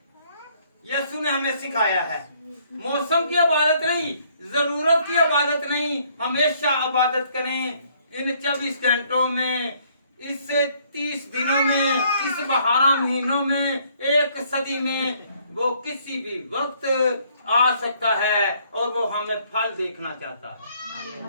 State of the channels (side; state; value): both; inverted; correlation -0.65